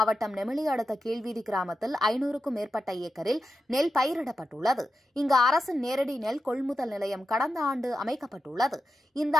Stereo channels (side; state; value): both; normal; correlation 0.90